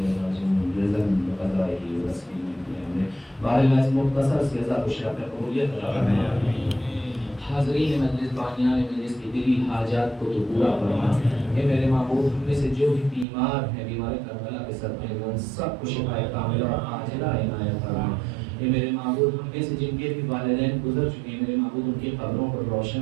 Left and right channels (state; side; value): drops out; left; at 13.2 s